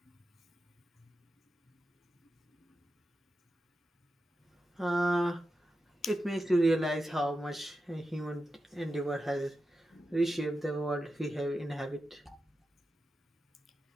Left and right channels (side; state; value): both; normal; correlation 0.90